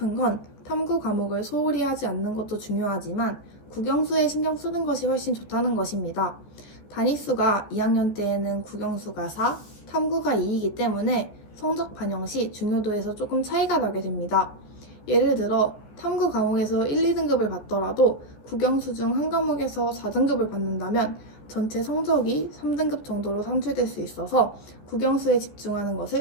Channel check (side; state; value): right; late; 14 ms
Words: 건 탐구 과목을 소홀히 하지 않는 것도 중요하지만 국영수에 신경 쓰는 것이 훨씬 좋다는 것입니다. 단위수가 2학년 때에는 국영수가 4, 탐구가 2이기 때문에 성적 반영 시 중요도에서 조금 차이가 나게 됩니다. 예를 들어 탐구 과목에서 1, 2등급을 받더라도 국영수 중 한 과목에서 4등급을 받는다면 전체 성적이 3등급 정도로 산출될 수 있어서 국영수에 집중하는